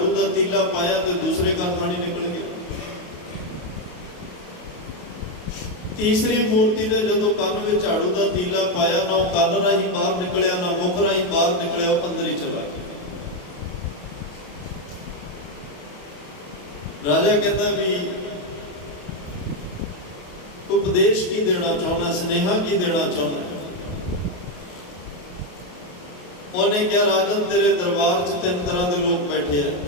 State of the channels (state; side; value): late; right; 28 ms